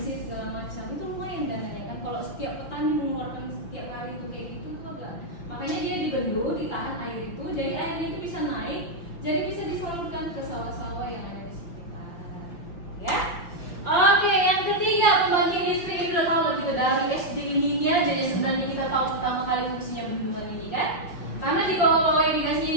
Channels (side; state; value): right; late; 5.6 ms